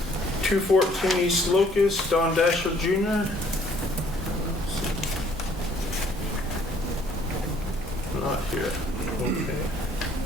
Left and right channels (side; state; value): both; normal; correlation 0.61